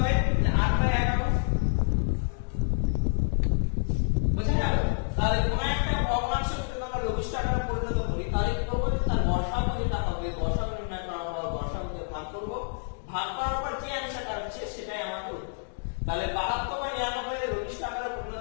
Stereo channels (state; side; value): silent; right; digital silence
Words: 8/11 বুঝা গেল তাহলে কোন একটা ভগ্নাংশকে যদি আমরা লঘিষ্ঠ আকারে পরিণত করি তাহলে কি করব তার গসাগু যেটা হবে গসাগু নির্ণয় করা আমরা গসাগু দিয়ে ভাগ করব ভাগ করার পর যে অ্যানসারটা হচ্ছে সেটাই আমাদের উত্তর তাহলে 72/99 এর লঘিষ্ঠ আকারে